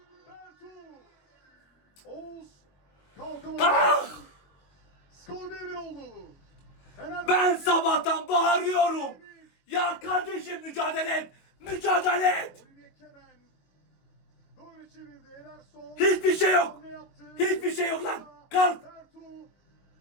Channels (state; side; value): late; right; 22 ms